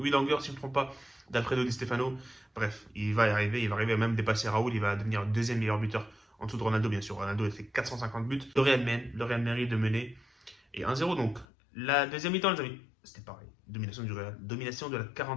longueurs, si je ne me trompe pas, d'Alfredo Di Stefano. Bref, il va arriver à même dépasser Raoul, il va devenir le 2e meilleur buteur en dessous de Ronaldo, bien sûr. Ronaldo a fait 450 buts. Le Real mérite de mener. Et 1-0 donc. La deuxième mi-temps, les amis, c'était pareil. Domination du Real. Domination de la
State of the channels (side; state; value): right; drops out; at 11.5 s